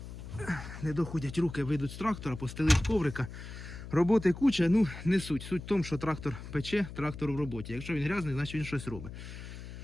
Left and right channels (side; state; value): left; noise; hum, 12 dB below the sound